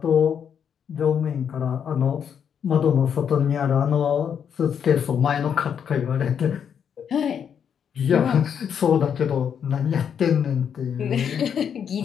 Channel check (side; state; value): right; quieter; 7.9 dB